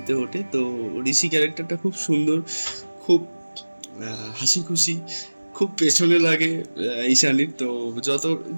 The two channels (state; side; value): inverted; both; correlation -1.00